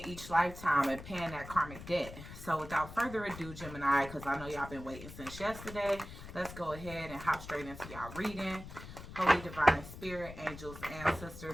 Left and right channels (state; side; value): noise; left; rumble, 13 dB below the sound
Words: each lifetime and paying that karmic debt. So without further ado, Gemini, because I know y'all been waiting since yesterday, let's go ahead and hop straight into y'all reading. Holy Divine Spirit, angels,